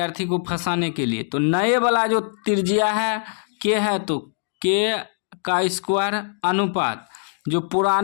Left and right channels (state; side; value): silent; right; digital silence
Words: को फंसाने के लिए। तो नए वाला जो त्रिज्या है के है, तो के का स्क्वायर अनुपात, जो